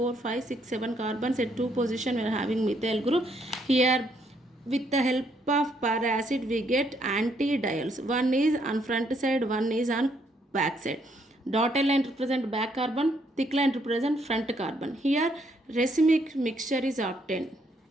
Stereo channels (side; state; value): both; normal; correlation 0.71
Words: 5, 6, 7 carbons at two position we are having methyl group. Here with the help of para-acid we get anti-diols. One is on front side, one is on back side. Dotted line represent back carbon, thick line represent front carbon. Here racemic mixture is obtained.